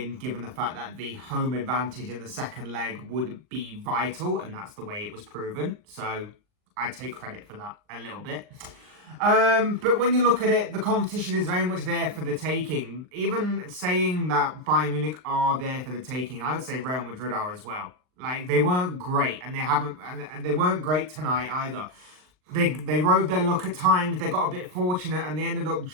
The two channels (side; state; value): left; late; 39 ms